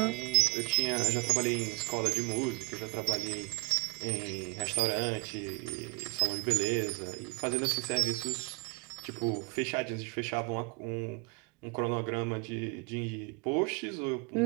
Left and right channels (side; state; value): left; quieter; 30.1 dB